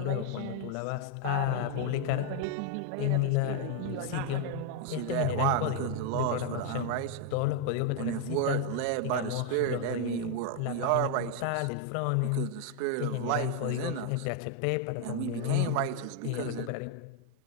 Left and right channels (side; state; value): both; different; correlation 0.00